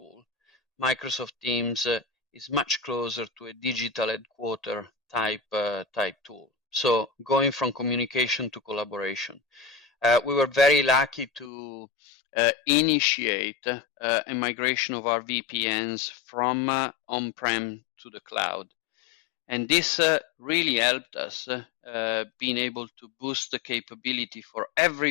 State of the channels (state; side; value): drops out; right; at 11.5 s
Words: Microsoft Teams is much closer to a digital headquarter type tool. So going from communication to collaboration. We were very lucky to initiate a migration of our VPNs from on-prem to the cloud. And this really helped us being able to boost the capability for